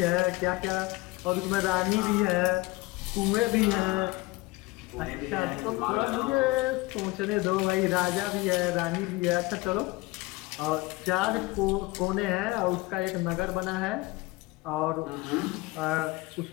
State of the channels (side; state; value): right; quieter; 22.1 dB